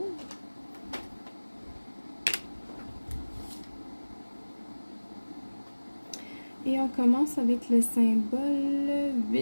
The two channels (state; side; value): inverted; both; correlation -1.00